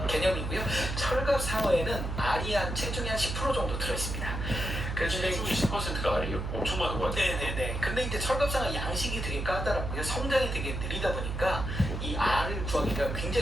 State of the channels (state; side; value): noise; right; hum, 4 dB below the sound